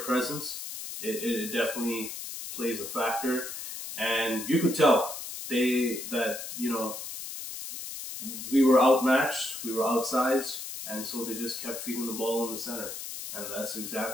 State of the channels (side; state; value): left; noise; hiss, 8 dB below the sound